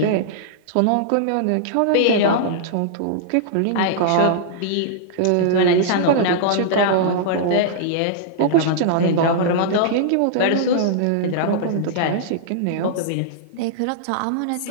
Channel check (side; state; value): both; different; correlation -0.02